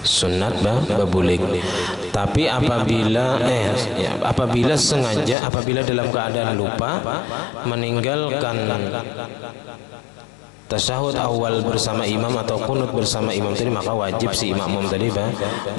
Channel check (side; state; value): right; drops out; at 5.4 s